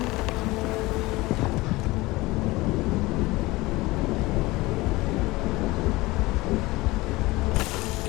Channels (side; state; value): right; quieter; 20.8 dB